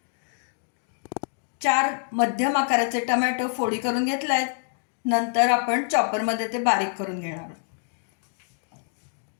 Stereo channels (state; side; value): silent; right; digital silence